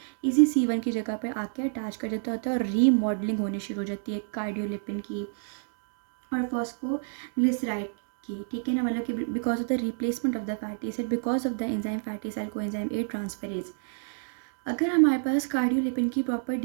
इसी C1 की जगह पे आके अटैच कर देता होता है और रीमॉडलिंग होनी शुरू हो जाती है कार्डियोलिपिन की और फॉस्फोग्लिसराइड की। ठीक है ना, मतलब कि because of the replacement of the fatty acid because of the enzyme fatty acyl coenzyme A transferase. अगर हमारे पास कार्डियोलिपिन की प्रॉपर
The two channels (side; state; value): left; silent; digital silence